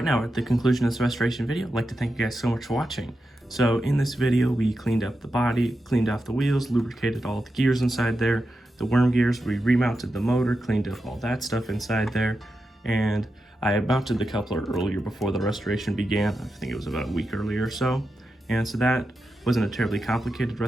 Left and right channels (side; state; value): both; normal; correlation 0.89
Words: now at the conclusion of this restoration video, I'd like to thank you guys so much for watching. So in this video, we cleaned up the body, cleaned off the wheels, lubricated all the gears inside there, the worm gears, we remounted the motor, cleaned up all that stuff inside there, and I mounted the coupler earlier before the restoration began. I think it was about a week earlier or so. And so that wasn't a terribly complicated